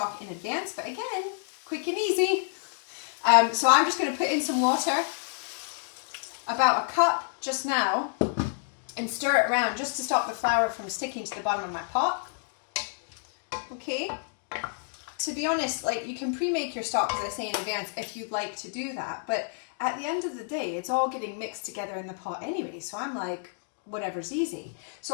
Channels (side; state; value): right; silent; digital silence